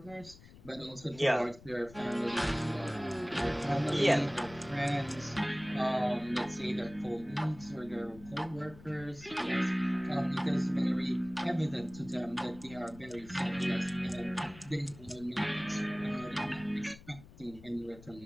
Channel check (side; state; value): left; noise; rumble, 19 dB below the sound